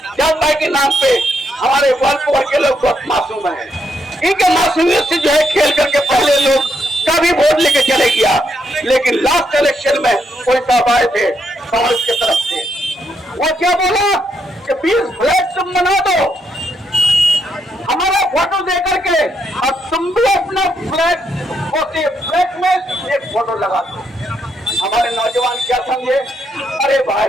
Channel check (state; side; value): normal; both; correlation 0.77